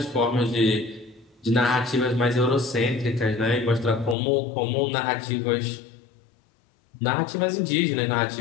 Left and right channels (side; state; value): right; drops out; at 4.2 s